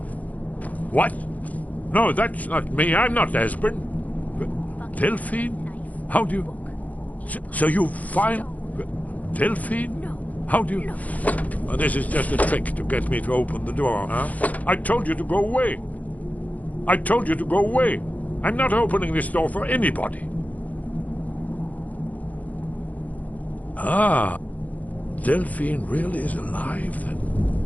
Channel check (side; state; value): right; late; 0.076 ms